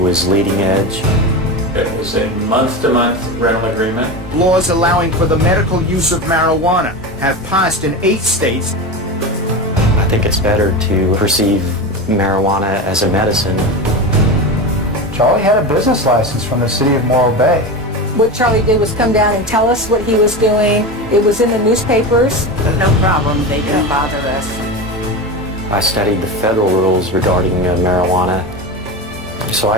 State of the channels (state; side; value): normal; both; correlation 0.23